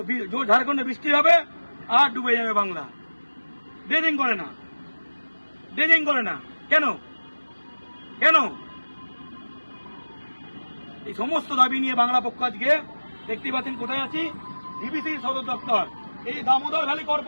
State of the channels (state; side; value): inverted; both; correlation -1.00